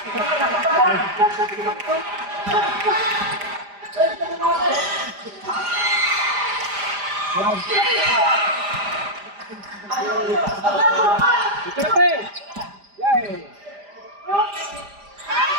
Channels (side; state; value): left; late; 5.0 ms